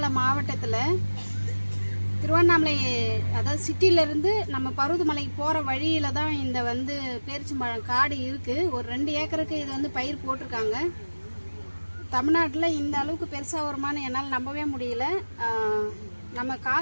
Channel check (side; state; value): both; inverted; correlation -1.00